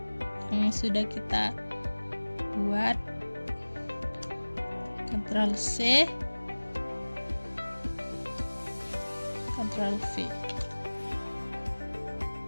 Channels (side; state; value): both; inverted; correlation -1.00